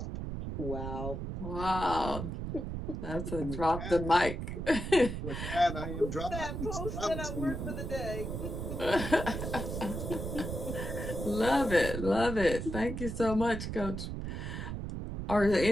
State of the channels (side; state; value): right; noise; rumble, 5 dB below the sound